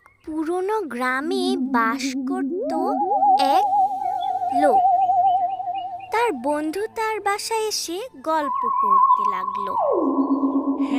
পুরনো গ্রামে বাস করত এক লোক। তার বন্ধু তার বাসায় এসে গল্প করতে লাগলো।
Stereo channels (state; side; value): identical; both; correlation 1.00